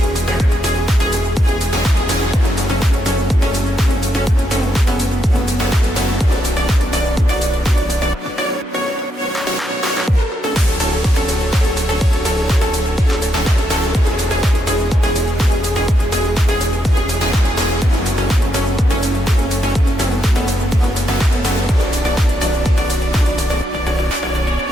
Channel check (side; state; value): both; normal; correlation 0.79